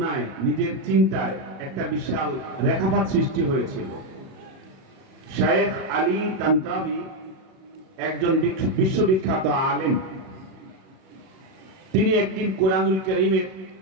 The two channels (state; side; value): late; left; 37 ms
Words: নিজের চিন্তায় একটা বিশাল রেখাপাত সৃষ্টি হয়েছিল। শেখ আলী তানতাবি একজন বিশ্ববিখ্যাত আলেম। তিনি একদিন কোরআনুল কারীমের